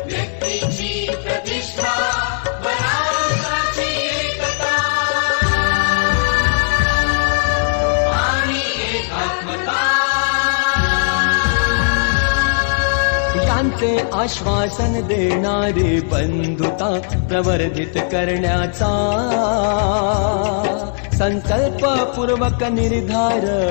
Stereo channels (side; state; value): right; silent; digital silence